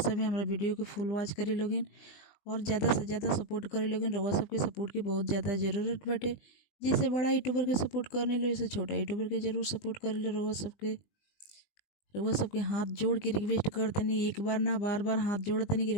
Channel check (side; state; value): right; late; 20 ms